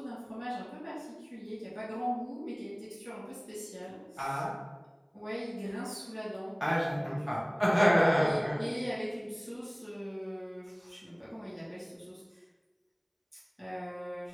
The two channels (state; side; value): identical; both; correlation 1.00